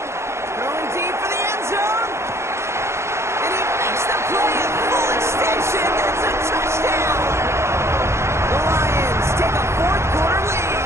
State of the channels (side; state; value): left; late; 0.13 ms